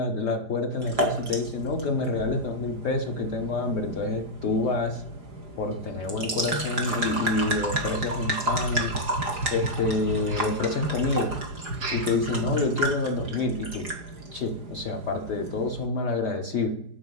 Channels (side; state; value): left; late; 4.9 ms